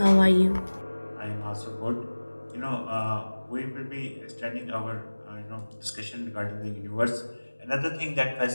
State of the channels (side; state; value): both; inverted; correlation -1.00